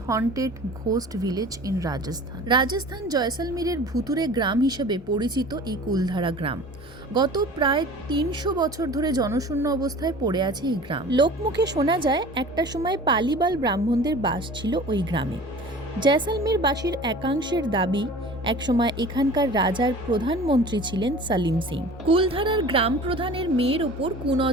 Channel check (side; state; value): both; normal; correlation 0.42